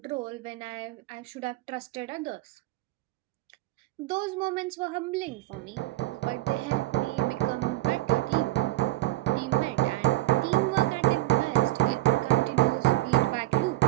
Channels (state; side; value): quieter; left; 17.6 dB